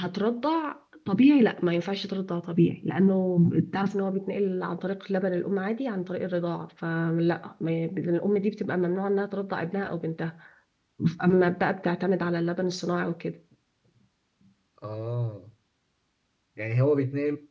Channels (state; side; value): identical; both; correlation 1.00